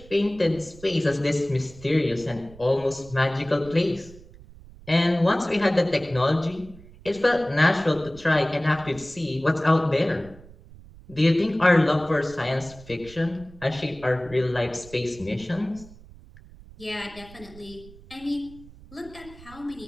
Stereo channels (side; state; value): right; noise; rumble, 21 dB below the sound